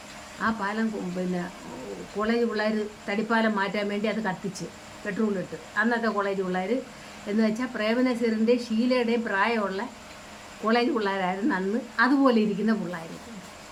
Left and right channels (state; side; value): identical; both; correlation 1.00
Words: ആ പാലം പിന്നെ കോളേജ് പിള്ളേർ തടിപ്പാലം മാറ്റാൻ വേണ്ടി അത് കത്തിച്ച് പെട്രോളിട്ട്. അന്നത്തെ കോളേജ് പിള്ളേർ എന്ന് വെച്ചാൽ പ്രേമനസീറിൻ്റെയും ഷീലയുടെയും പ്രായമുള്ള കോളേജ് പിള്ളേരായിരുന്നു അന്ന്. അതുപോലെ ഇരിക്കുന്ന പിള്ളേർ,